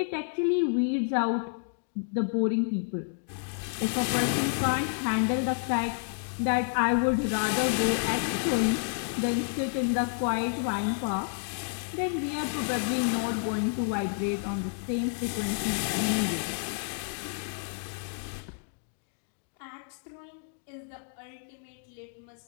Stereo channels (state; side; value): silent; right; 58 dB below the other